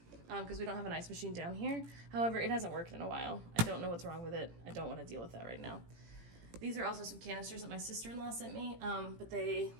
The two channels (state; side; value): late; left; 18 ms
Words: because we don't have an ice machine down here. However, it hasn't worked in a while. I don't know what's wrong with it. I don't want to deal with that right now. These are also some canisters that my sister-in-law sent me, but they,